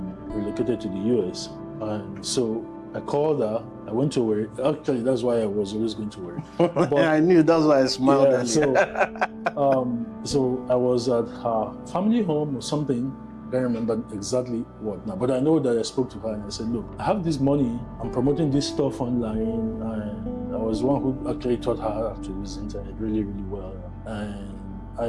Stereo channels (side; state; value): both; identical; correlation 1.00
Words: relocated to the US. And so I called her, I went to work. Actually, that's why I was always going to work. But I knew, that's why I smiled. Yeah, so I was at her family home or something. I don't remember exactly what now, but I know that I spoke to her and I said, look, I have this money, I'm promoting this stuff online, and I was one who actually taught her how to use the internet really, really well. And